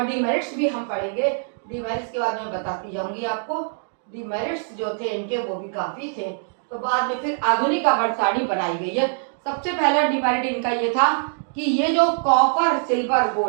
डिमेरिट्स भी हम पढ़ेंगे, डिमेरिट्स के बाद मैं बताती जाऊंगी आपको। डिमेरिट्स जो थे इनके वो भी काफी थे। तो बाद में फिर आधुनिक आवर्त सारणी बनाई गई है। सबसे पहला डिमेरिट इनका ये था कि ये जो कॉपर सिल्वर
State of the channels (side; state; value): left; silent; digital silence